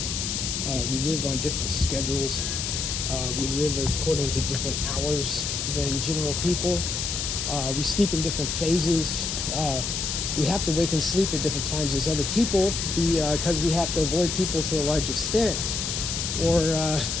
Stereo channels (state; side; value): noise; left; hiss, 2 dB below the sound